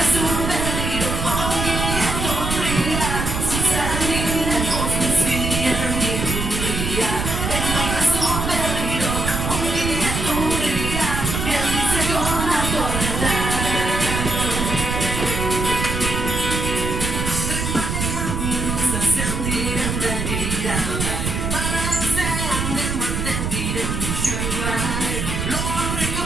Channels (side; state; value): right; noise; rumble, 2 dB below the sound